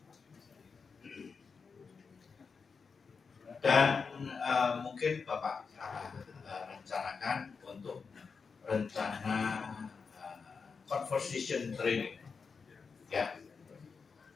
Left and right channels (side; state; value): right; quieter; 5.3 dB